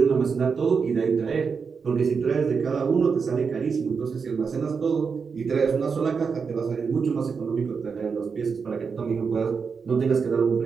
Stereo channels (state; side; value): quieter; left; 5.6 dB